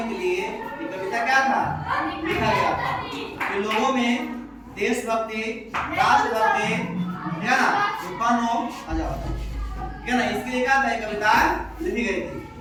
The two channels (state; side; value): identical; both; correlation 1.00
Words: के लिए ये कविता क्या था? लिखा गया था कि लोगों में देशभक्ति, राष्ट्रभक्ति है ना उत्पन्न हो। आ जाओ, क्या ना, इसके लिए क्या था ये कविता लिखी गई थी।